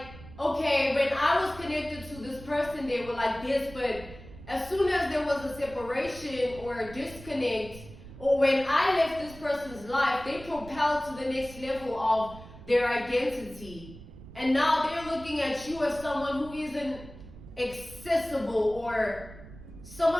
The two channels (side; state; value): right; noise; rumble, 17 dB below the sound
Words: okay, when I was connected to this person, they were like this, but as soon as there was a separation or a disconnect, or when I left this person's life, they propelled to the next level of their identity. And now they're looking at you as someone who isn't accessible, or